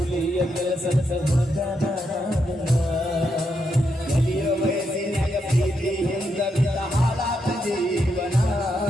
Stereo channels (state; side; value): normal; both; correlation 0.81